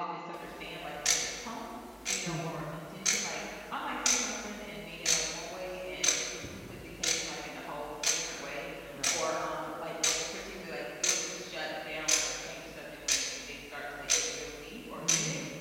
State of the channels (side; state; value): both; identical; correlation 1.00